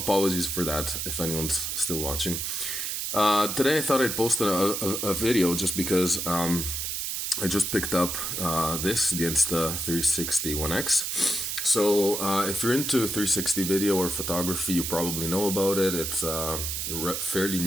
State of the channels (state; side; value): noise; right; hiss, 2 dB below the sound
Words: for that if anyone's still watching. Today I thought I'd post a video just because I just picked up the Insta360 One X. So if you're into 360 video or photography, you probably know about it. It's fairly